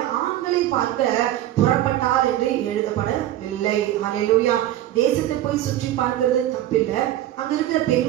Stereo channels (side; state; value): left; quieter; 13.4 dB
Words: ஆண்களை பார்க்க புறப்பட்டாள் என்று எழுதப்படவில்லை. ஹல்லேலூயா. தேசத்தை போய் சுற்றி பார்க்கிறது தப்பில்லை, அங்க இருக்கிற